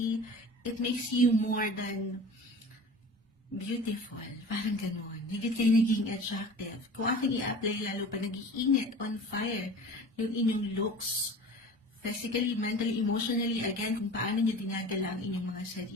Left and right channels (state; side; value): normal; both; correlation 0.39